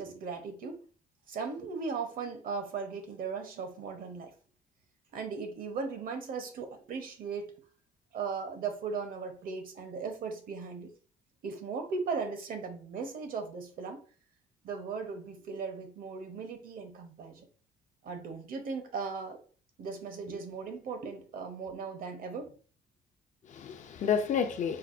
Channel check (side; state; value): both; normal; correlation 0.29